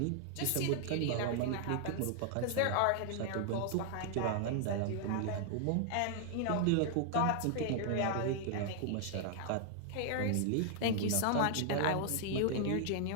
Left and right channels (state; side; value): different; both; correlation 0.00